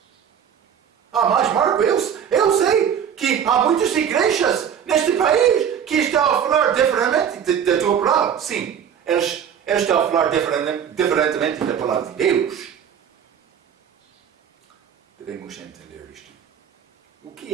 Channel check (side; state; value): left; quieter; 8.3 dB